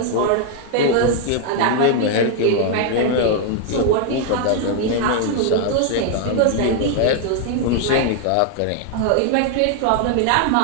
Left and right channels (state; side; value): different; both; correlation 0.00